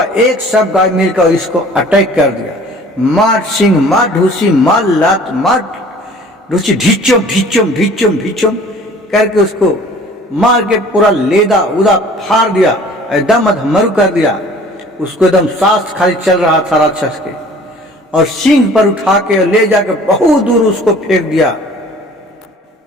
एक सब गाय मिलकर इसको अटैक कर दिया। मार सिंह, मार ढूसी, मार लात, मार ढूसी, ढिचुम ढिचुम ढिचुम ढिचुम करके उसको मार के पूरा लेदा उदा फाड़ दिया, एकदम अधमरू कर दिया। उसको एकदम सांस खाली चल रहा था राक्षस के, और सिंह पर उठा के ले जाके बहुत दूर उसको फेंक दिया।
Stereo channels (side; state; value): both; normal; correlation 0.49